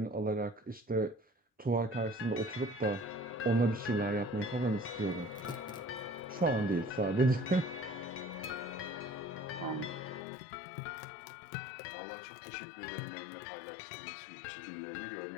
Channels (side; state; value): right; drops out; at 10.2 s